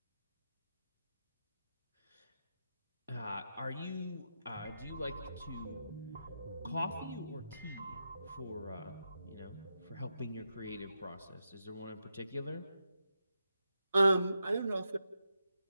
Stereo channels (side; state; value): both; inverted; correlation -0.86